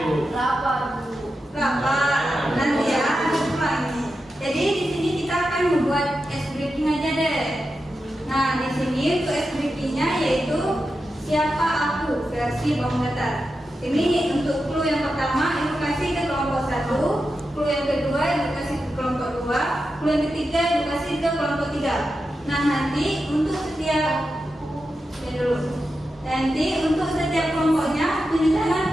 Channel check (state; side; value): normal; both; correlation 0.89